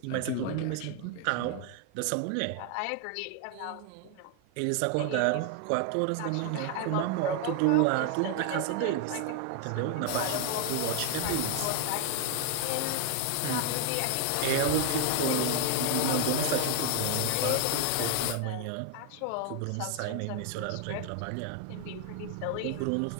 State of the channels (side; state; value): both; different; correlation 0.00